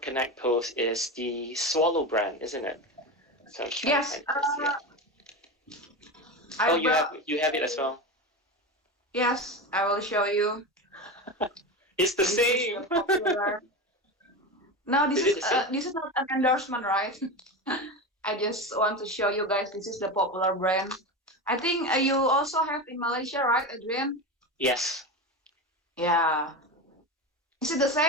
Connect post is the Swallow brand, isn't it? So I'm trying to Yes. find this, yeah. I Oh, you brought. have it as well. Yes, I will show you. It's the This is same. the popular. No, Is it the same? this is not an endorsement, right? I just want to show you guys. This is the popular brand. I think you also have in Malaysia, right, Adrian? Yes. Yeah. Is it the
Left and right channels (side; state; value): both; normal; correlation 0.22